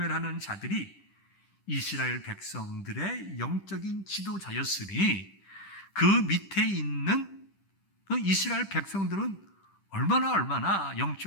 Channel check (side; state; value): right; late; 10 ms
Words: 자들이 이스라엘 백성들의 영적인 지도자였으니 그 밑에 있는 이스라엘 백성들은 얼마나